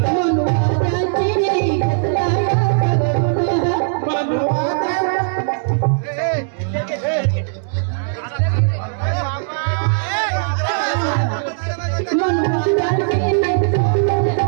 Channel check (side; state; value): left; silent; digital silence